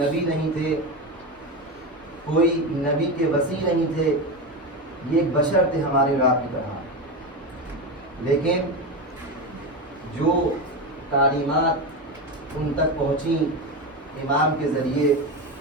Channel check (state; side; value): normal; both; correlation 0.17